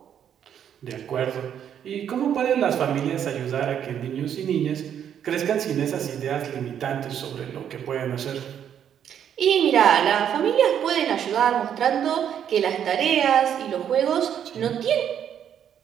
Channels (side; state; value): left; quieter; 9.1 dB